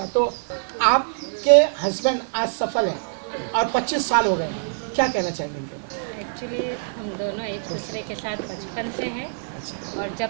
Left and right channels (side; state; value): left; silent; 62 dB below the other